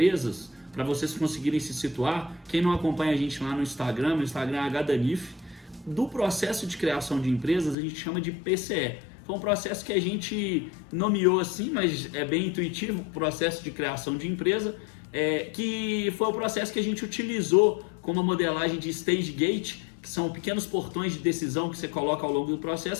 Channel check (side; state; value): right; drops out; at 7.8 s